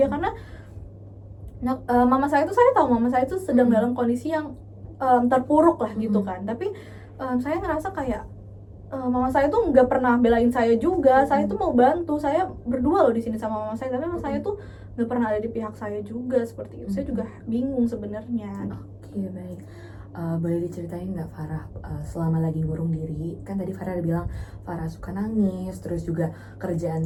karena mama saya tuh sedang dalam kondisi yang terpuruk lah gitu kan. Tapi saya ngerasa kayak mama saya tuh nggak pernah belain saya juga. Saya tuh mau bantu, saya berdua loh di sini sama mama saya, tapi mama saya tuh nggak pernah ada di pihak saya juga seperti itu. Saya juga bingung sebenarnya. Oke, baik. Boleh diceritain nggak Farah selama lagi ngurung diri? Kan tadi Farah ada bilang Farah suka nangis, terus juga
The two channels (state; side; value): identical; both; correlation 1.00